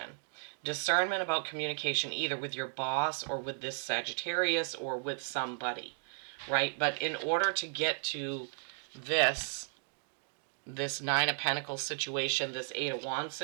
Discernment about communication either with your boss or with this Sagittarius or with somebody, right? But in order to get to this Nine of Pentacles situation, this Eight of Wands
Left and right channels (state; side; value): silent; left; digital silence